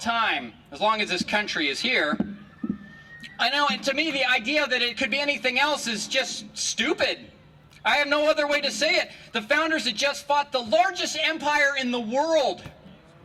as long as this country is here. I know, and to me, the idea that it could be anything else is just stupid. I have no other way to say it. The founders had just fought the largest empire in the world,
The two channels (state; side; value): identical; both; correlation 1.00